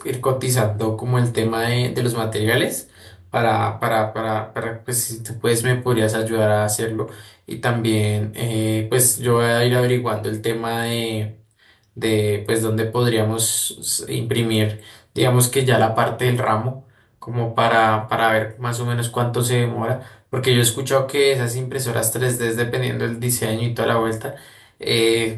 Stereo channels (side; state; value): both; identical; correlation 1.00